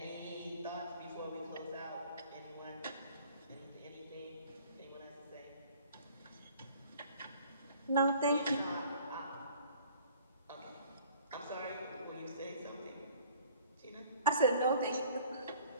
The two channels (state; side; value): inverted; both; correlation -0.51